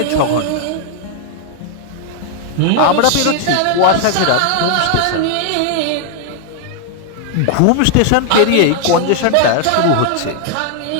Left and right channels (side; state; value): both; different; correlation 0.00